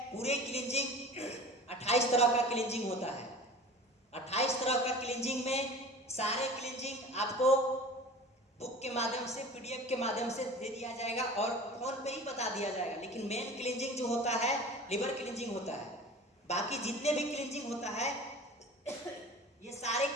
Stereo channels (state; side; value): normal; both; correlation 0.39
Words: पूरे क्लींजिंग 28 तरह का क्लींजिंग होता है। 28 तरह का क्लींजिंग में सारे क्लींजिंग आपको बुक के माध्यम से, PDF के माध्यम से दे दिया जाएगा और फोन पे ही बता दिया जाएगा। लेकिन मेन क्लींजिंग जो होता है लिवर क्लींजिंग होता है। बाकी जितने भी क्लींजिंग होता है ये सारे